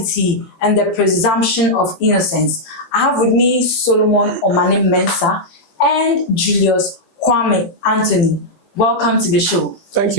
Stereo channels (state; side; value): late; right; 18 ms